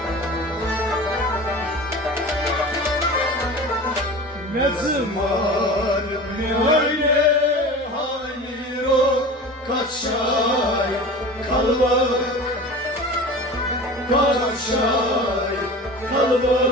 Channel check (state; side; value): normal; both; correlation 0.35